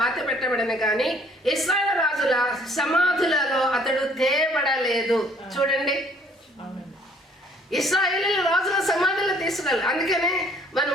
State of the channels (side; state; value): both; normal; correlation 0.60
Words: పెట్టబడిన కానీ ఇశ్రాయేలు రాజుల సమాధులలో అతడు తేబడలేదు. చూడండి, ఇశ్రాయేలు రాజుల సమాధులు తీసుకెళ్ళాలి. అందుకనే మనం